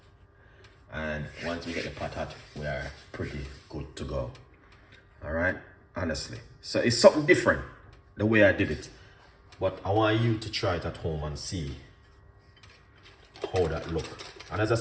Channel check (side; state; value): both; identical; correlation 1.00